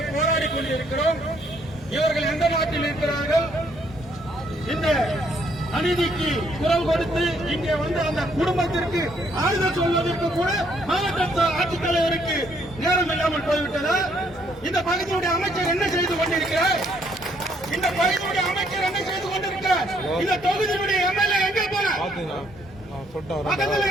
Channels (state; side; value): normal; both; correlation 0.69